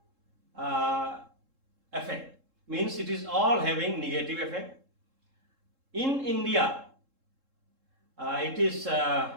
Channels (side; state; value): left; late; 3.7 ms